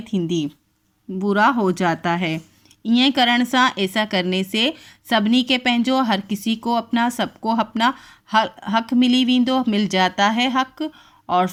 थींदी, पूरा हो जाता है। ईअं करण सां ऐसा करने से सभिनी के पंहिंजो, हर किसी को अपना, सबको अपना हक़ मिली वेंदो, मिल जाता है हक़ और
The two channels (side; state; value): both; identical; correlation 1.00